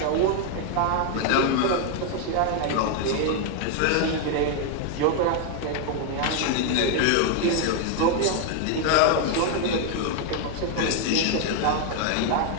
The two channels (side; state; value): both; different; correlation 0.00